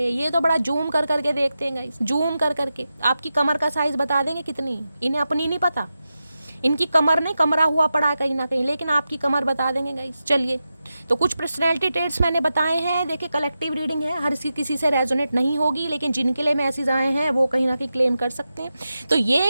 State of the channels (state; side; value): inverted; both; correlation -0.91